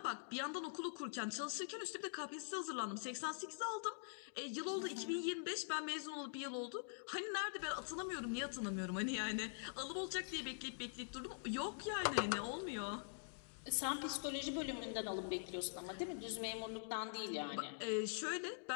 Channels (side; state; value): right; silent; digital silence